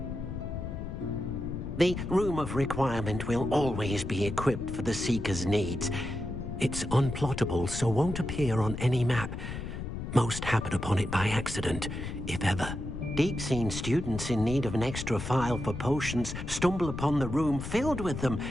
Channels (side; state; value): left; noise; rumble, 7 dB below the sound